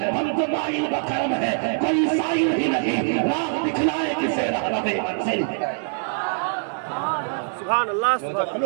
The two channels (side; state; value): left; silent; 63 dB below the other